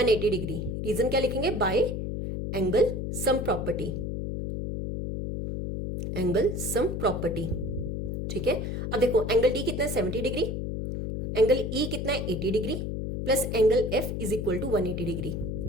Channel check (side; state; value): left; noise; hum, 3 dB below the sound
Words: डिग्री। रीजन क्या लिखेंगे, bye angle sum property, angle sum property. ठीक है, अब देखो एंगल डी कितना है, 70 डिग्री, एंगल ई कितना है, 80 degree, plus angle F is equal to 180 degree.